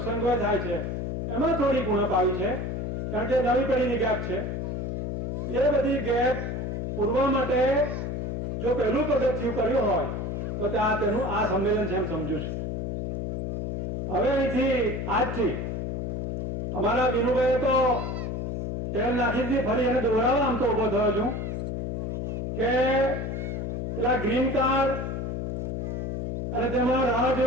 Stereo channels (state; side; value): noise; left; hum, 2 dB below the sound